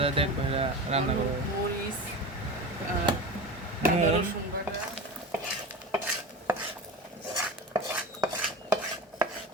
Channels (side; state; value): both; normal; correlation 0.28